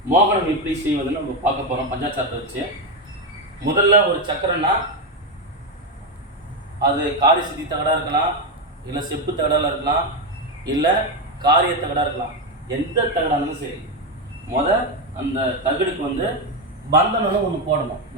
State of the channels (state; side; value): normal; both; correlation 0.09